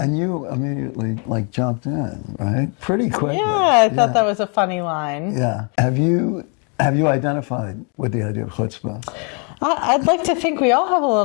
you immediately jumped in, right? Pretty quickly. Yeah, I thought that was a funny line. Yeah. Have you identified with the idea of chutzpah? I'd like to think we all have a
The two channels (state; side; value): quieter; right; 37.1 dB